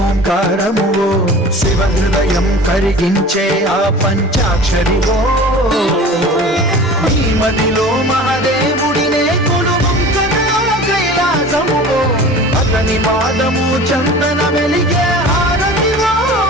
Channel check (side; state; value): both; normal; correlation 0.40